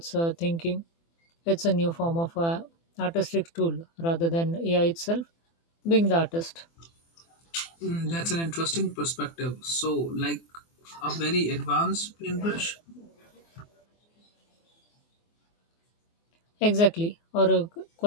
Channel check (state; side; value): late; right; 24 ms